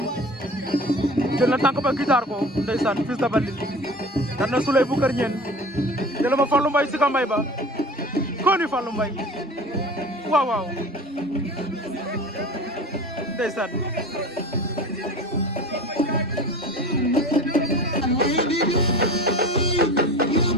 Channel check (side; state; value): both; normal; correlation 0.37